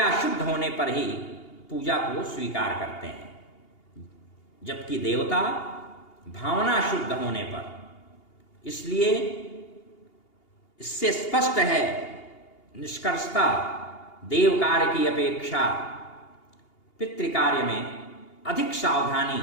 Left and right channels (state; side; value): late; right; 2.8 ms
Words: शुद्ध होने पर ही पूजा को स्वीकार करते हैं, जबकि देवता भावना शुद्ध होने पर। इसलिए इससे स्पष्ट है निष्कर्षता देव कार्य की अपेक्षा पितृकार्य में अधिक सावधानी